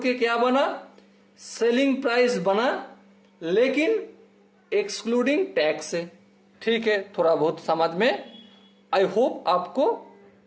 के क्या बना? सेलिंग प्राइस बना, लेकिन एक्सक्लूडिंग टैक्स से। ठीक है, थोड़ा बहुत समझ में आई होप आपको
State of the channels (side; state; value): both; identical; correlation 1.00